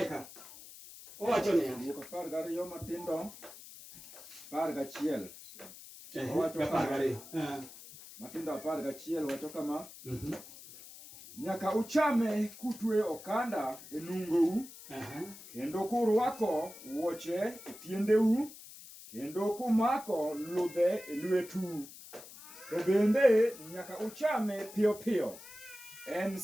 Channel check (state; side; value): noise; left; hiss, 16 dB below the sound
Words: ka. Owacho niya, Wuok 12 matindo 11. owacho 12. Matindo 11 wacho kama. Nyaka uchame kutwe okanda e nungou. Kendo kurwako wuoche e tiendeu. Kendo kumako ludhe e lwetu. To bende nyaka uchame piyo piyo. En